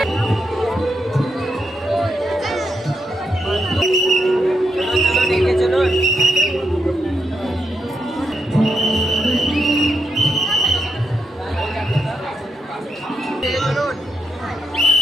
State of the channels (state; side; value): normal; both; correlation 0.82